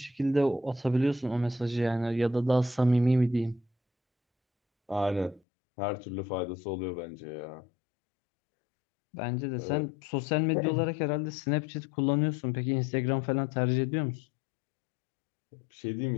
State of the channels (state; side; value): drops out; right; at 5.4 s